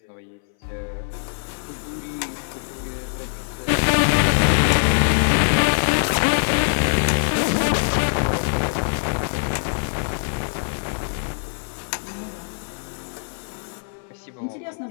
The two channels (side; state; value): right; silent; 60 dB below the other